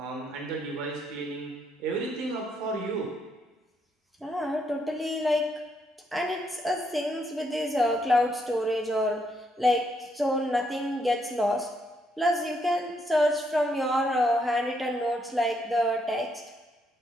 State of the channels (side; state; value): both; normal; correlation 0.75